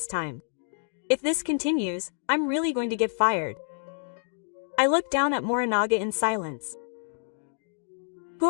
time. If this continues, I'm really going to get fired. I looked down at Morinaga in silence. Who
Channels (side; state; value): right; silent; digital silence